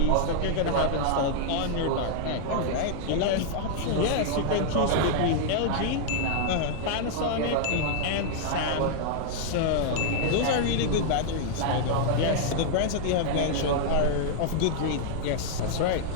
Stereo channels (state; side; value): different; both; correlation -0.01